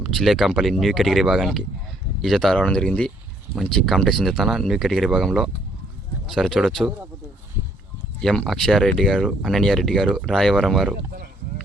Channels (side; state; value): both; normal; correlation 0.66